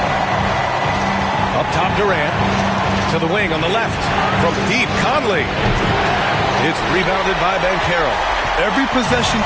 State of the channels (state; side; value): identical; both; correlation 1.00